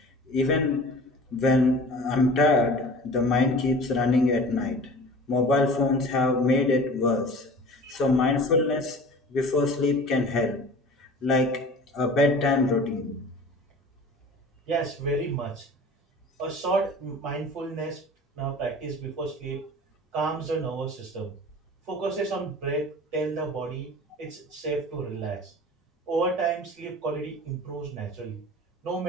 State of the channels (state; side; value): normal; both; correlation 0.41